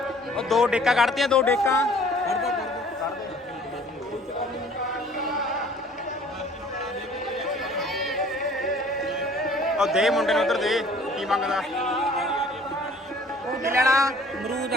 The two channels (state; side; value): normal; both; correlation 0.53